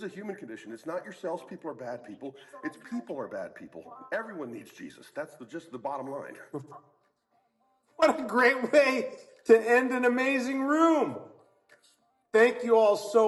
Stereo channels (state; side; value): identical; both; correlation 1.00